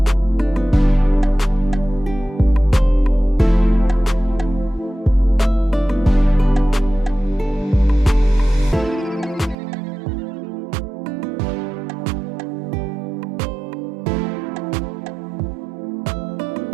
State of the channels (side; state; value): left; drops out; at 9.6 s